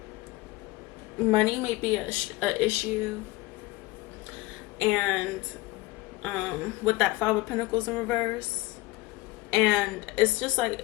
money may be a issue, and with that Five of Pentacles in reverse, and it's just like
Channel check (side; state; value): right; quieter; 20.3 dB